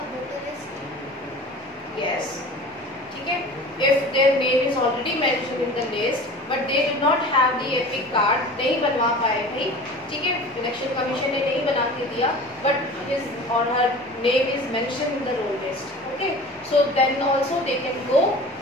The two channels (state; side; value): normal; both; correlation 0.39